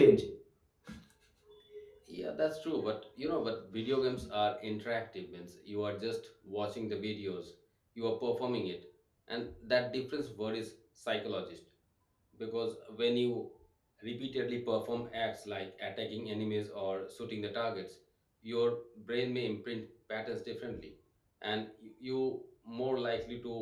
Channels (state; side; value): identical; both; correlation 1.00